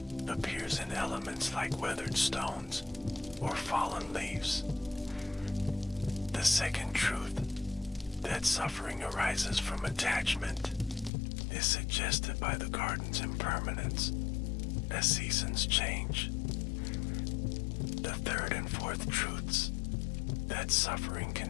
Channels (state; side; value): drops out; right; at 11.1 s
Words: appears in elements like weathered stones or fallen leaves. The second truth, that suffering arises from attachment, is suggested by the garden's impermanence as seasons change. The third and fourth truths, that suffering